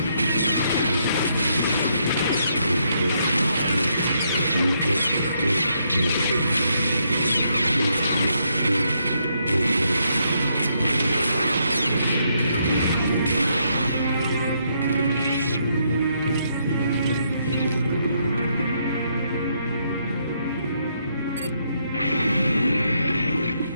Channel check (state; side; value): inverted; both; correlation -0.76